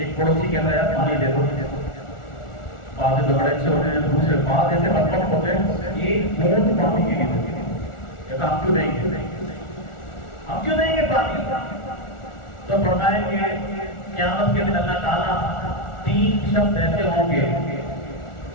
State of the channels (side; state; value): right; late; 1.4 ms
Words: پڑوسی کہتا ہے یار پانی دے دو، بعض لوگ بڑے اچھے ہوتے ہیں، دوسرے بعض ایسے بدبخت ہوتے ہیں ایک بوند پانی کے لیے دیتے ہیں، کہتا ہم کیوں دیں گے، ہم کیوں دیں گے پانی؟ تو فرمائیں کہ قیامت کے دن اللہ تعالیٰ 3 شخص ایسے ہوں گے